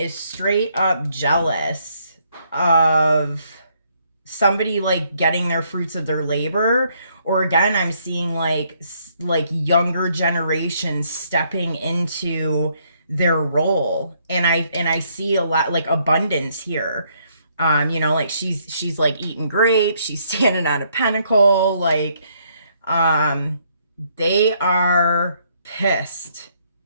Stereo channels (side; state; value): both; inverted; correlation -0.70